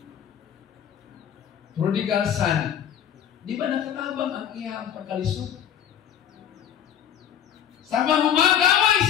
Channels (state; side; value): quieter; right; 9.5 dB